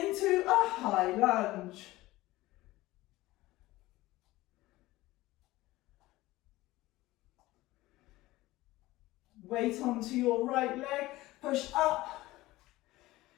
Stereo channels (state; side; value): quieter; right; 18.2 dB